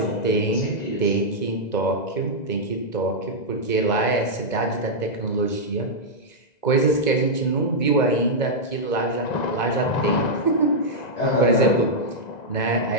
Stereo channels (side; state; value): right; late; 2.0 ms